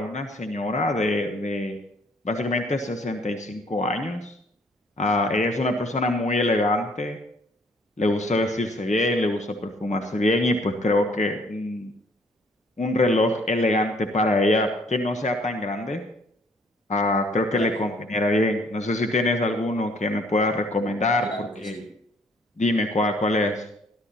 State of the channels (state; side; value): normal; both; correlation 0.61